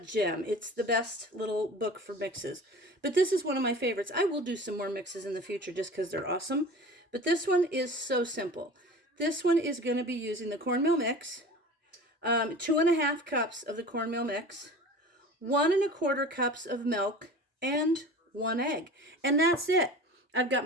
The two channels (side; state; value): both; normal; correlation 0.39